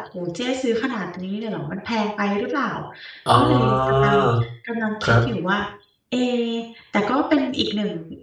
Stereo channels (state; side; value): identical; both; correlation 1.00